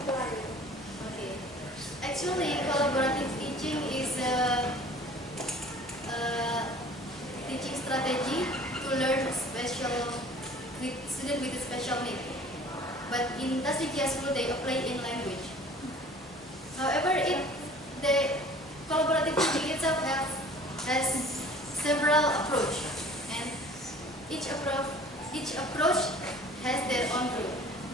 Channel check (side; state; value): both; normal; correlation 0.48